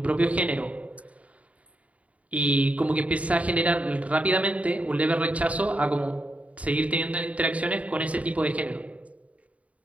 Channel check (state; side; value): late; left; 0.067 ms